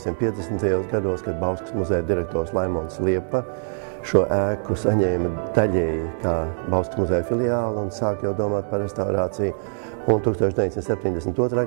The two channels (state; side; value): silent; left; digital silence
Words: gados, kad Bauskas muzeja direktors Laimons Liepa šo ēku saņēma daļēji kā Bauskas muzeja filiāli un sāk jau domāt par restaurāciju, un 1972.